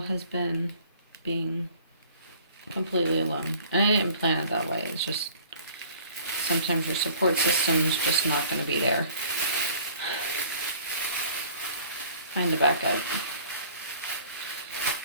has been being completely alone. And I didn't plan it that way. It's just sometimes your support system's just not going to be there. Find a backup.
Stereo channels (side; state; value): both; inverted; correlation -0.53